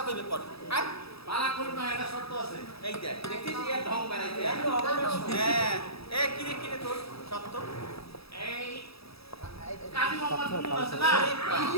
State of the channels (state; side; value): late; right; 0.77 ms